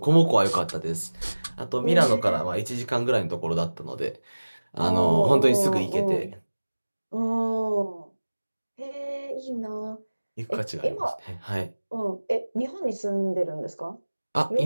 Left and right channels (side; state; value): both; inverted; correlation -1.00